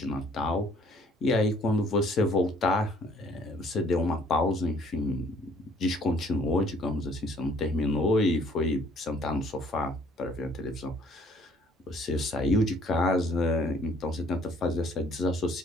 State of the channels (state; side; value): normal; both; correlation 0.59